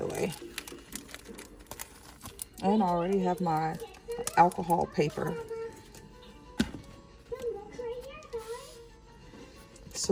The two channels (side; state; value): both; identical; correlation 1.00